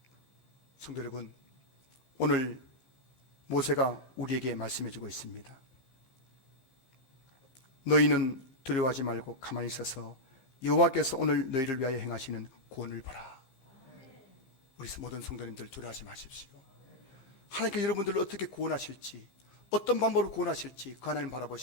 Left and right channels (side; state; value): right; late; 15 ms